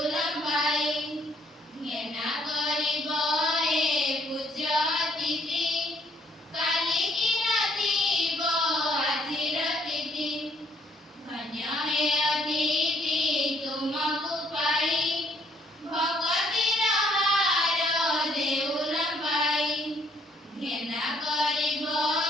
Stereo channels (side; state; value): both; normal; correlation 0.67